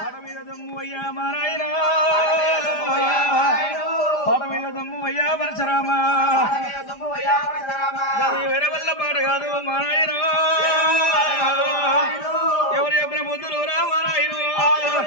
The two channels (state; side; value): late; right; 5.0 ms